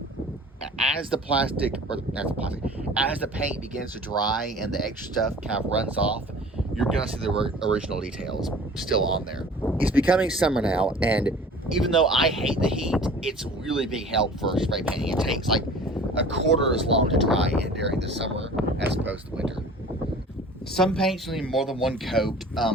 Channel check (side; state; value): both; normal; correlation 0.45